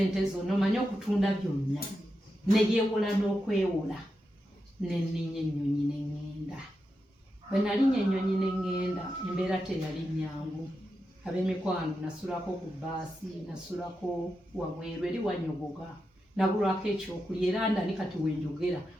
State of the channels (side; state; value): both; normal; correlation 0.88